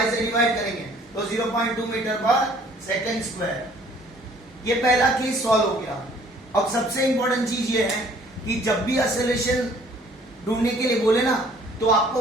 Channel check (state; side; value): normal; both; correlation 0.57